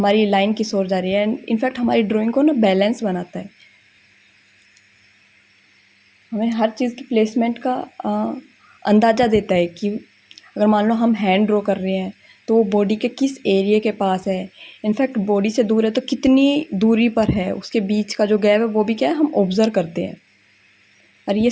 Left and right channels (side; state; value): both; identical; correlation 1.00